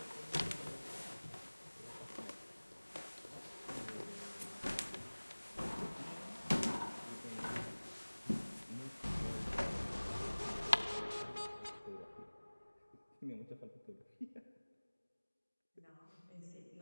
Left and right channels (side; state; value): both; inverted; correlation -1.00